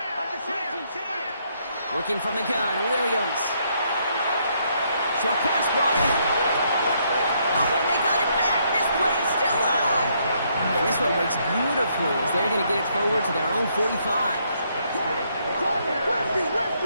Working from the gun, Williams. Short pass brought in. Oh, and they got it back. This play is still live. And this one breaks beautifully as they're going to get it forward to their own 45.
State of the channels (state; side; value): inverted; both; correlation -0.72